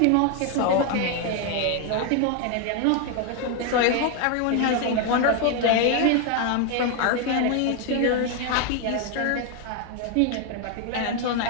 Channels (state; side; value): different; both; correlation 0.01